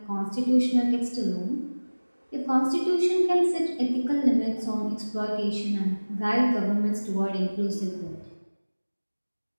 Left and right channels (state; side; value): inverted; both; correlation -1.00